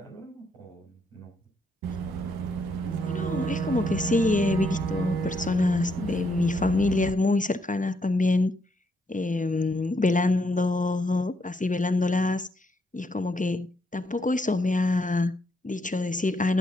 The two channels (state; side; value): normal; both; correlation 0.75